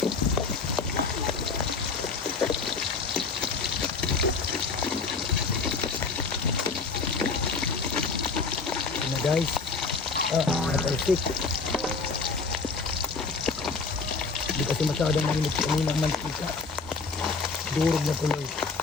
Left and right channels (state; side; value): quieter; right; 4.4 dB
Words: Guys, natalsik. Hindi kasi masyadong mainit kanina ang mantika. Durog na tuloy.